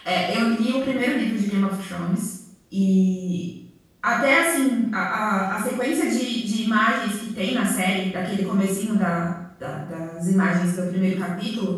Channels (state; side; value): identical; both; correlation 1.00